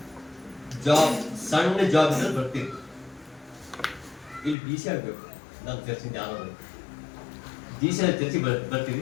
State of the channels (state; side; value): drops out; right; at 4.5 s